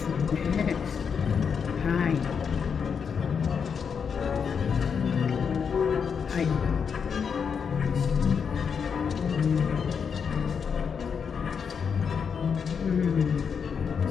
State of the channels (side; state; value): right; quieter; 6.5 dB